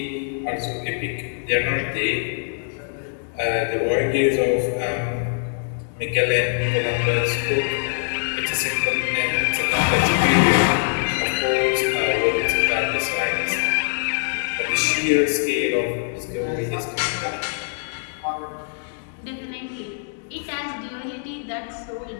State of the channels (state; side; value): silent; right; digital silence